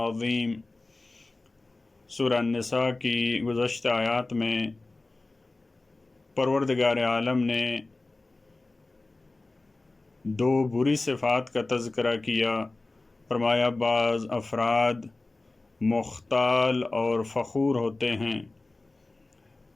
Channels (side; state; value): right; quieter; 3.2 dB